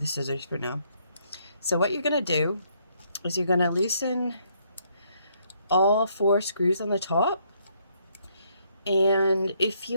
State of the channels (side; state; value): both; inverted; correlation -0.71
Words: scissors for now. So what you're gonna do is you're gonna loosen all 4 screws on the top. And if